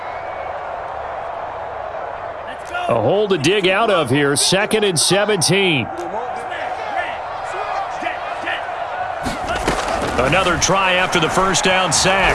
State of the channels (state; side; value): identical; both; correlation 1.00